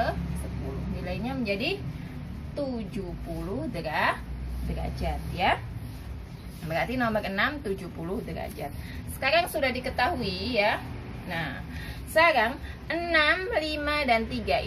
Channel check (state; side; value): identical; both; correlation 1.00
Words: Nilainya menjadi 70 derajat ya. Berarti nomor 6 70 derajat. Sekarang sudah diketahui ya. Nah, sekarang 6, 5 dan 3